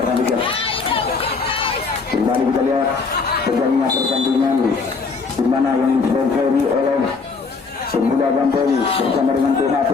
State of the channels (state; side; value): quieter; right; 4.6 dB